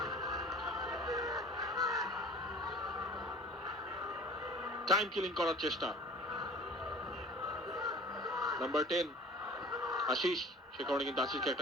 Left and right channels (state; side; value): normal; both; correlation 0.44